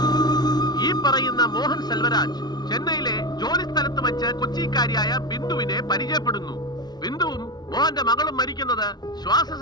മോഹൻ സെൽവരാജ് ചെന്നൈയിലെ ജോലി സ്ഥലത്ത് വെച്ച് കൊച്ചിക്കാരിയായ ബിന്ദുവിനെ പരിചയപ്പെടുന്നു. ബിന്ദുവും മോഹന്റെ മകളും മരിക്കുന്നത് ശ്വാസ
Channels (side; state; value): right; late; 0.20 ms